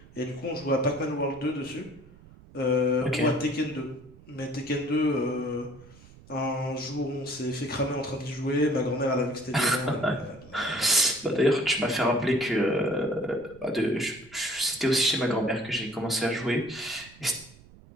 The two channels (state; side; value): noise; right; rumble, 22 dB below the sound